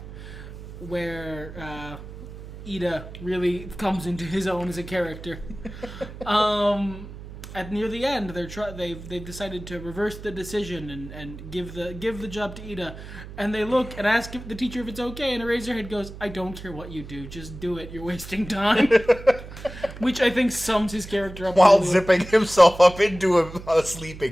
where Ida really comes into his own as a character. At near the end, they've decided to reverse the decision and give the job to Ida, and they look and ask the teacher if it's okay, and Eraserhead goes, "I don't care what you do, just do it. You're wasting time." Which I think sums his character up while zipping himself up into a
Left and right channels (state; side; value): noise; right; hum, 13 dB below the sound